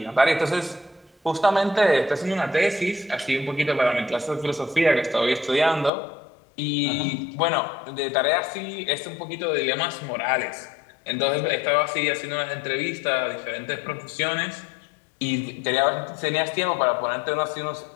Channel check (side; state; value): right; drops out; at 5.9 s